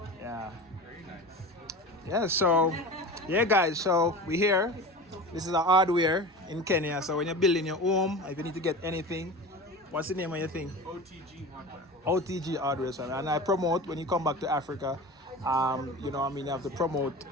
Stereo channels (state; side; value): normal; both; correlation 0.32